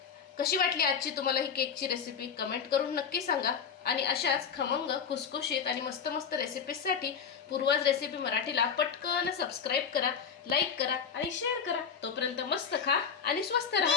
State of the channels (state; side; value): quieter; right; 6.9 dB